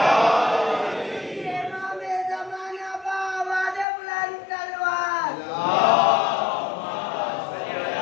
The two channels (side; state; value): right; drops out; at 3.9 s